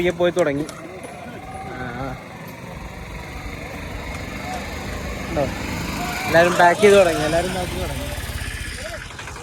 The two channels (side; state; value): both; identical; correlation 1.00